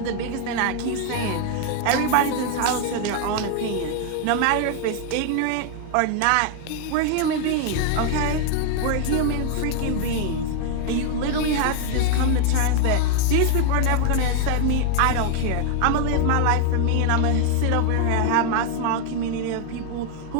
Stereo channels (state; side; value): different; both; correlation 0.00